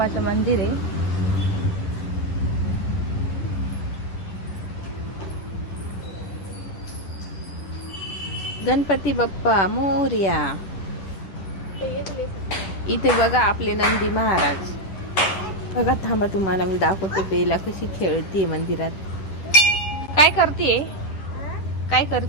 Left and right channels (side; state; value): right; late; 10 ms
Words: मंदिर आहे. गणपती बाप्पा मोरया. इथे बघा आपले नंदी महाराज. बघा थांबा तुम्हाला मी दाखवते बेला कशी खेळतीये मंदिरात. काय करतीये? काय